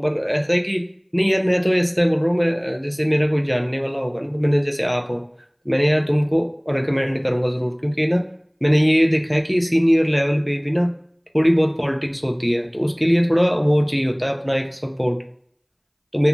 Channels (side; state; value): both; identical; correlation 1.00